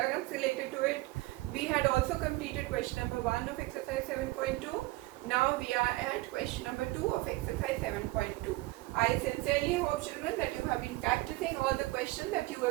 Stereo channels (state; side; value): quieter; left; 20.2 dB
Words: related to it. We had also completed question number 1 of exercise 7.2. Now we are at question number 2 of exercise 7.2. I sincerely hope, children, that you have been practicing all the questions that you